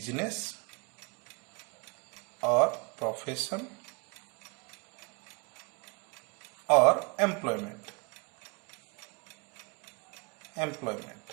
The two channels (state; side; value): quieter; left; 33.0 dB